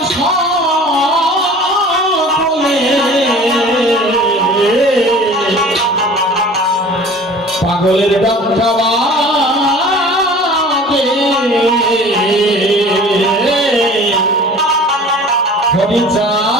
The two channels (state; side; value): normal; both; correlation 0.44